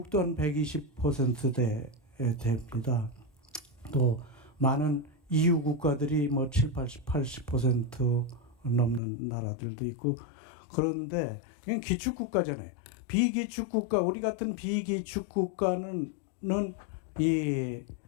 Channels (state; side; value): drops out; right; at 9.0 s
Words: 한 120%대 됩니다. 또 많은 EU 국가들이 뭐 80% 넘는 나라들도 있고, 그런데 그냥 기축국가잖아요. 비기축국가, 우리 같은 비기축국가는 이